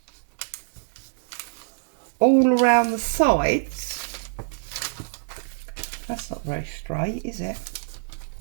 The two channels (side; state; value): left; silent; digital silence